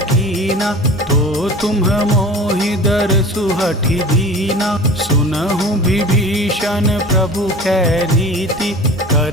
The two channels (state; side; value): normal; both; correlation 0.38